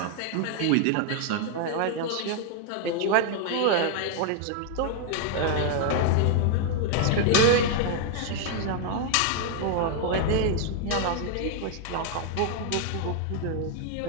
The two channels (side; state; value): both; different; correlation 0.00